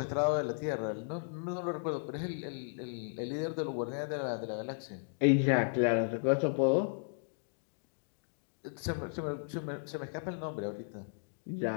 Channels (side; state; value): right; silent; digital silence